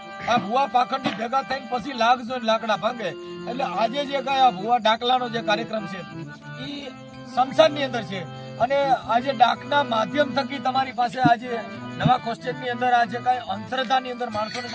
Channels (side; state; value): both; identical; correlation 1.00